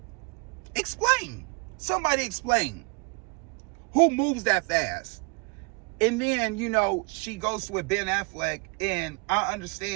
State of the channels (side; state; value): left; quieter; 31.5 dB